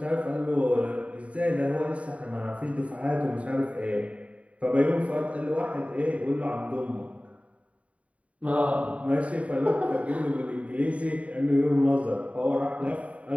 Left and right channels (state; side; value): late; left; 0.066 ms